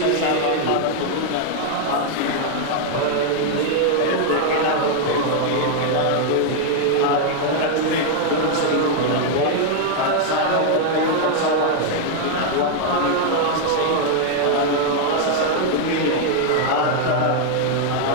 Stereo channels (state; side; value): different; both; correlation 0.00